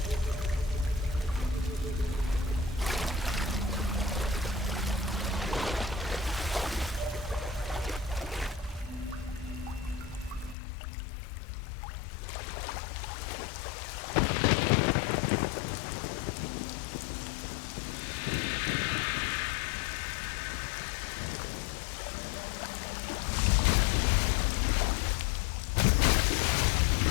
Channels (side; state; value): right; drops out; at 10.6 s